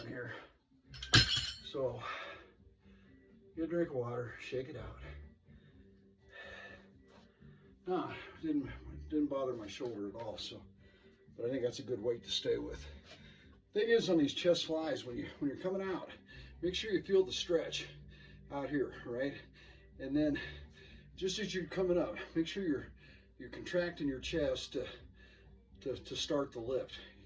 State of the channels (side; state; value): both; identical; correlation 1.00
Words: here. So, get a drink of water, shake it out. Nah, didn't bother my shoulder at all, so, but I think that's a good weight to stay with. Thing is, on these chest flies, when you're coming out, make sure you feel the stretch out here, right? And then, just as you're coming up, make sure you're contracting your chest to start the lift,